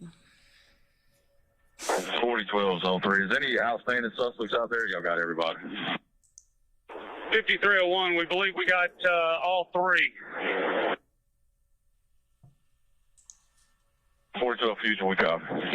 4012 is on 3. Is any outstanding suspects out there? Y'all got everybody. 5301, we believe we got all 3. 4012 Fusion, we copy.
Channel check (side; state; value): both; identical; correlation 1.00